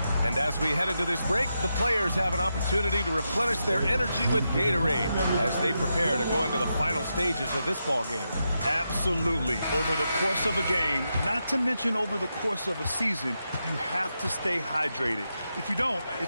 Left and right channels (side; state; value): both; inverted; correlation -0.86